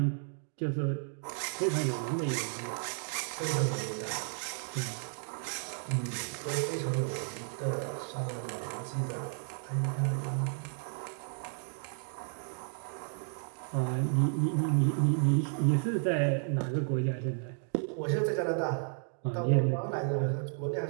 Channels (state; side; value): silent; left; 56 dB below the other